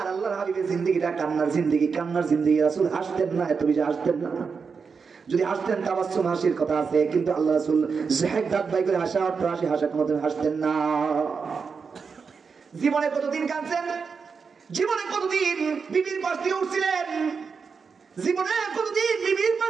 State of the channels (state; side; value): quieter; left; 5.5 dB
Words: আল্লাহর হাবিবের জিন্দেগিটা কান্নার জিন্দেগি, রাসূল হাসতেন না, এত বেশি হাসতেন না। যদি হাসতেন তাবাসসুম হাসির কথা আছে, কিন্তু আল্লাহ রাসূল জাহেক দাঁত বাই করে হাসা অট্টহাসি হাসার মতন হাসতেন না। জীবনে কতদিন কাঁদছেন? জীবনে কতদিন বিবির পাশ দিয়ে উঠছিলেন? জীবনে কতদিন বিবির